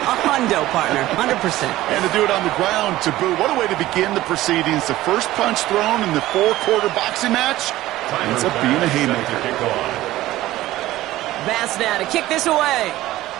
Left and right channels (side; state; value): left; quieter; 16.0 dB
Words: hundo, partner, 100%. And to do it on the ground to boot. What a way to begin the proceedings. The first punch thrown in the four-quarter boxing match ends up being a haymaker. Bass now to kick this away.